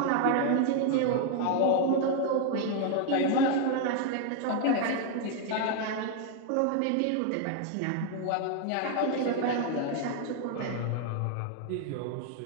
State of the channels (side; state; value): both; different; correlation 0.00